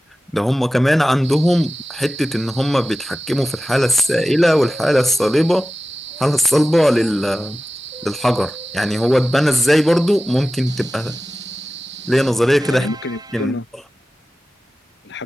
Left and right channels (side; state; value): both; normal; correlation 0.95